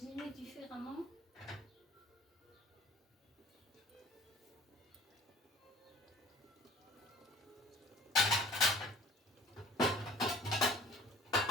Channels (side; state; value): both; normal; correlation 0.49